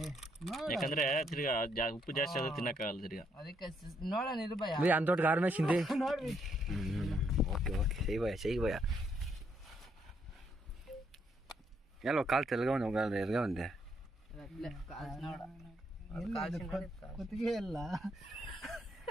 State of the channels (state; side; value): normal; both; correlation 0.74